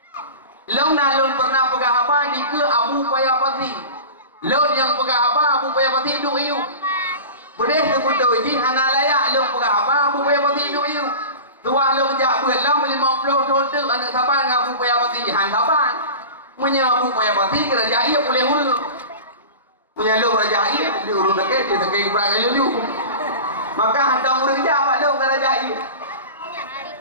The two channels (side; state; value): both; inverted; correlation -0.32